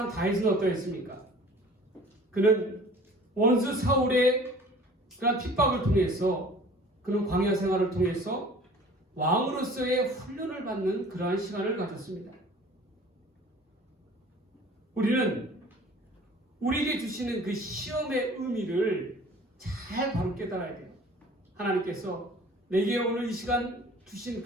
다윗은 어떠했습니까? 그는 원수 사울의 그런 핍박을 통해서 그는 광야 생활을 통해서 왕으로서의 훈련을 받는 그러한 시간을 가졌습니다. 우리는 우리에게 주시는 그 시험의 의미를 잘 바로 깨달아야 돼요. 하나님께서 내게 오늘 이 시간 주신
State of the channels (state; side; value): normal; both; correlation 0.48